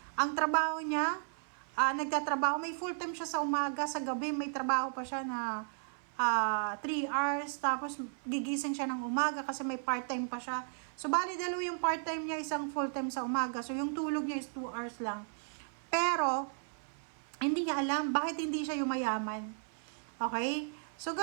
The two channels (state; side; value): silent; left; 55 dB below the other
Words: Ang trabaho niya, nagtatrabaho, may full time siya sa umaga, sa gabi may trabaho pa siya na 3 hours, tapos gigising siya ng umaga kasi may part-time pa siya. So, bali dalawa yung part-time niya, isang full-time sa umaga. So, yung tulog niya is 2 hours lang. Pero, hindi niya alam bakit hindi siya yumayaman. Okay? So,